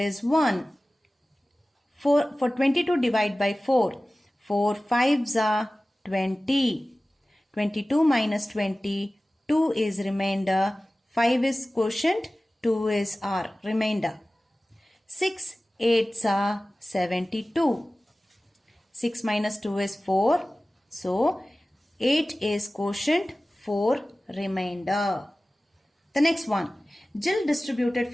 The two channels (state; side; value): normal; both; correlation 0.97